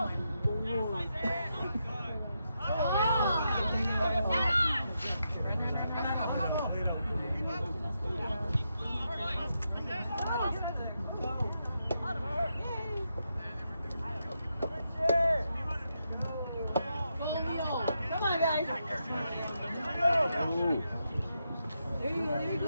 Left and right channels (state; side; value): inverted; both; correlation -0.84